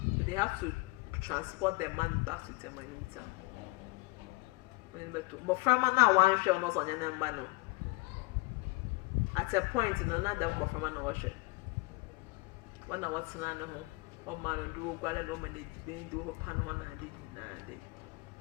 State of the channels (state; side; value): quieter; right; 24.2 dB